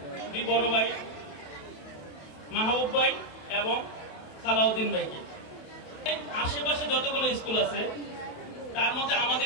দুই বড় ভাই মাহবুব ভাই এবং সালাউদ্দিন ভাইকে। আশেপাশে যতগুলো স্কুল আছে তার মধ্যে আমাদের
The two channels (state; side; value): late; right; 27 ms